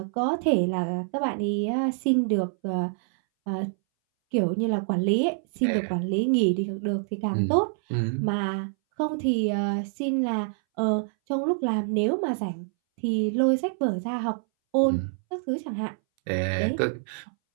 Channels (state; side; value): silent; left; 60 dB below the other